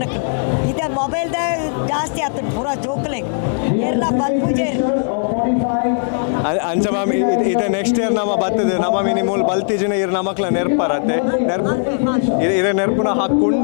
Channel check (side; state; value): right; silent; 67 dB below the other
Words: ಇದೆ ಮೊಬೈಲ್ದ ಜಾಸ್ತಿ ಆಗ್ತದೆ ಪೂರ ಜೋಕ್ಲೆ ಎಲ್ಲ ಬಲ್ಪುಜೆ ಅಂಚ ಮ್ಯಾಮ್ ಇದು ನೆಕ್ಸ್ಟ್ ಇಯರ್ ನಮ್ಮ ಬರ್ತದೆ ನಮ್ಮ ಮಿನಿಮೂಲ್ ಬಲ್ತಿಜಿನ ಇರ್ ನಮಕ್ಲ ನೆರ್ಪರತ್ತೆ ಇದೇ ನೆರ್ಪುನ